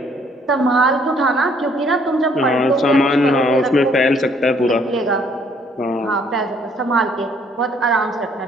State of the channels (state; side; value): normal; both; correlation 0.64